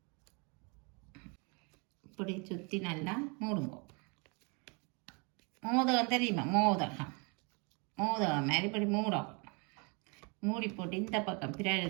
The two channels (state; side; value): quieter; left; 32.7 dB